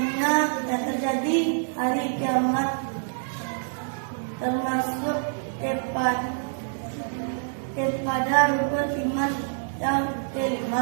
terjadi hari kiamat, termasuk kepada rukun iman yang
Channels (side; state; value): left; silent; digital silence